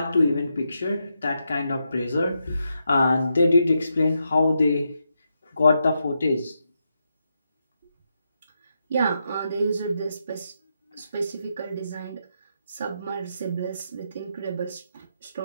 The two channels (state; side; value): inverted; both; correlation -0.83